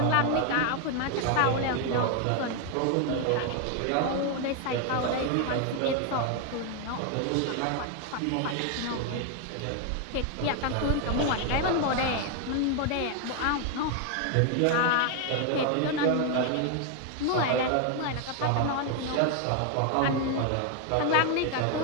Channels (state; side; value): different; both; correlation 0.01